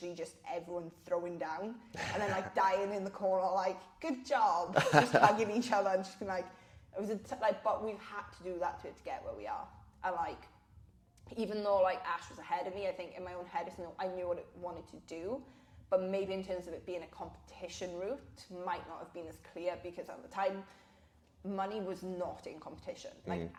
just everyone throwing down and then like dying in the corner, like, good job, just hugging each other and just being like, it was but we've had to do that to get where we are. And like, even though like Ash was ahead of me, I think in my own head I knew what it wanted to do, but maybe in terms of it being a competition route might not have been as clear, because at the time money was not in competition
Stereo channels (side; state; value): both; identical; correlation 1.00